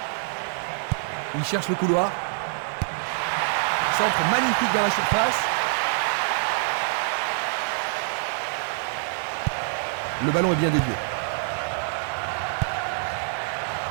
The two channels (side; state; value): left; silent; digital silence